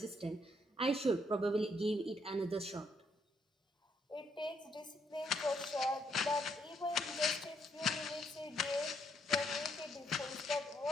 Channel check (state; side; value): normal; both; correlation 0.74